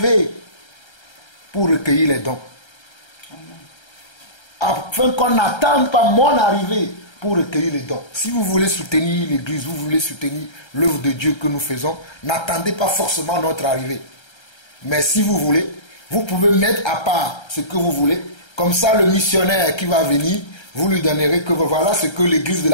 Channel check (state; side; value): late; right; 1.3 ms